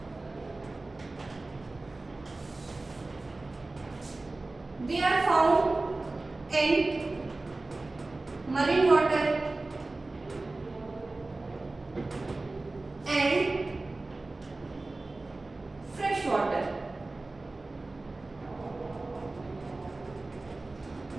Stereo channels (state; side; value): quieter; left; 3.2 dB